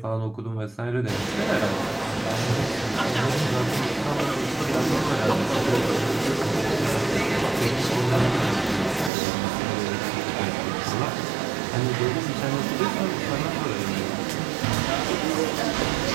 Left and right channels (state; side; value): drops out; left; at 9.1 s